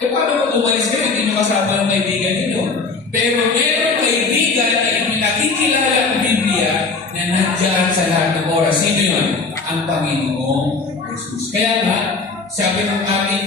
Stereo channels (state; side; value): quieter; right; 4.2 dB